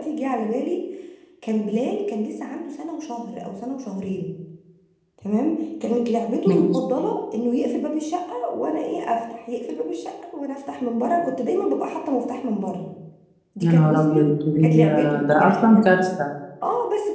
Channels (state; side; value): identical; both; correlation 1.00